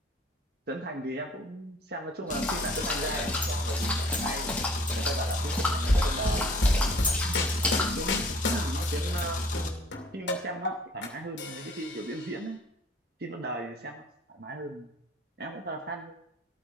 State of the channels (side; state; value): both; normal; correlation 0.54